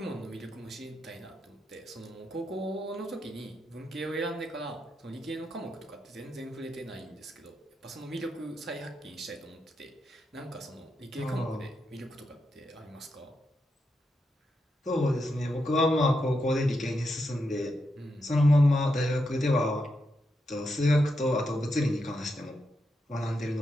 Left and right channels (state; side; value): normal; both; correlation 0.84